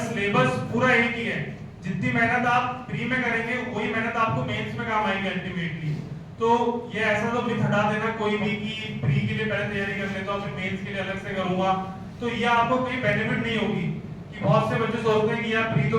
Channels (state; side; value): identical; both; correlation 1.00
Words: सिलेबस पूरा एक ही है। जितनी मेहनत आप प्री में करेंगे वही मेहनत आपको मेंस में काम आएगी अल्टीमेटली। तो ये ऐसा तो मिथ हटा देना कोई भी कि प्री के लिए पहले तैयारी कर लेता हूं फिर मेंस के लिए अलग से करूंगा, तो ये आपको कोई बेनिफिट नहीं होगी। कि बहुत से बच्चे सोचते हैं कि यार प्री तो